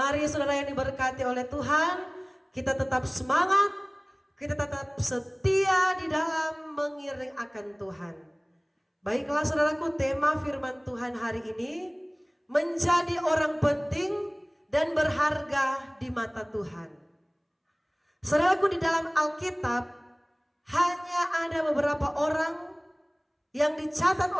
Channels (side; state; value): both; identical; correlation 1.00